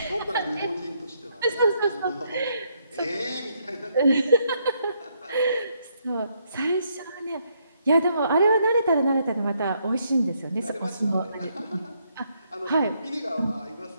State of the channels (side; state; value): both; inverted; correlation -0.74